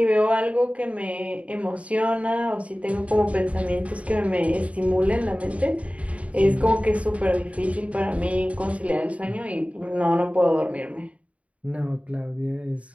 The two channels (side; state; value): left; late; 0.065 ms